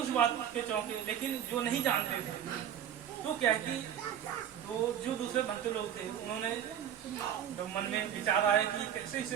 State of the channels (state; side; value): quieter; left; 9.6 dB